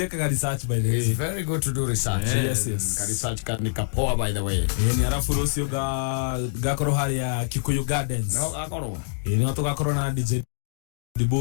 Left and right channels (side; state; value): right; silent; digital silence